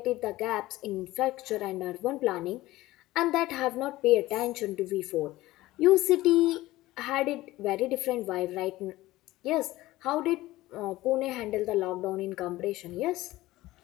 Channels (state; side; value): quieter; right; 17.5 dB